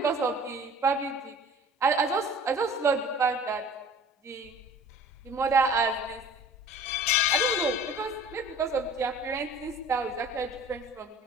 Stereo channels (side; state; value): both; normal; correlation 0.47